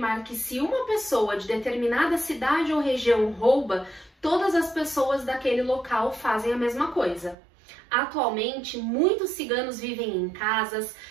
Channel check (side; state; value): left; drops out; at 7.4 s